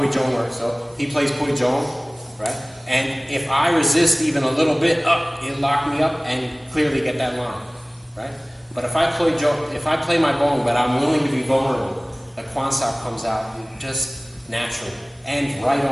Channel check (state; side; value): normal; both; correlation 0.98